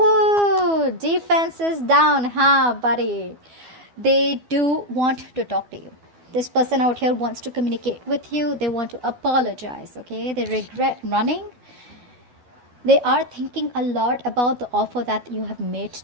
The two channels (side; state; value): left; late; 12 ms